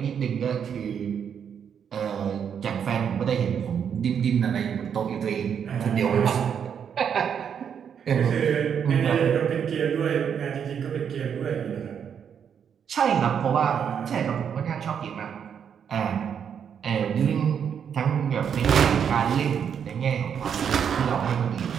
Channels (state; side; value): quieter; left; 7.8 dB